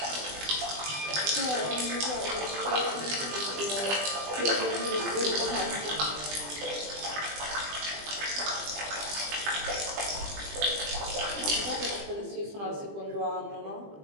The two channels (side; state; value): left; late; 20 ms